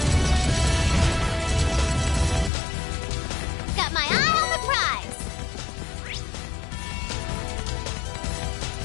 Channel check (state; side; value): drops out; right; at 2.5 s